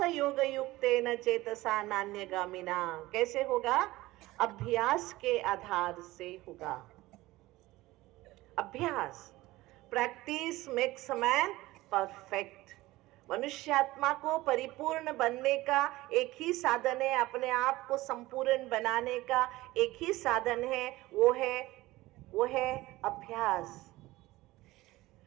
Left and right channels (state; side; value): quieter; left; 18.5 dB